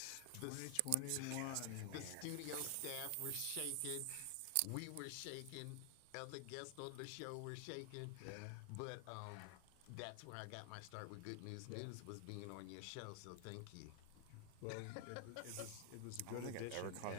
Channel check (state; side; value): different; both; correlation 0.00